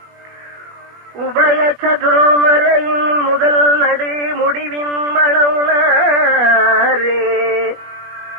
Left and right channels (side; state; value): left; late; 20 ms